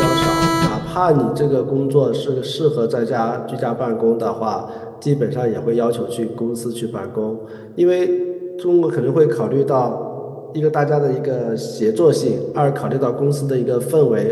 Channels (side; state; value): both; identical; correlation 1.00